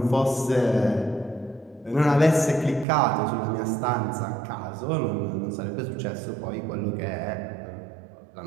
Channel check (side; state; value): left; drops out; at 2.9 s